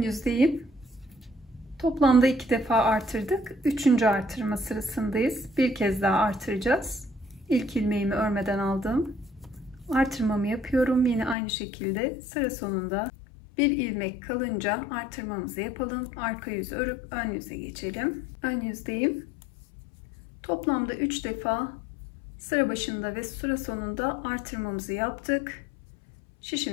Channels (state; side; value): drops out; right; at 11.4 s